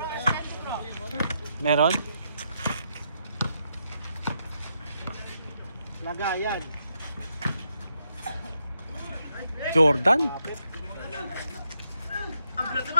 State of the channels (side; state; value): both; inverted; correlation -0.80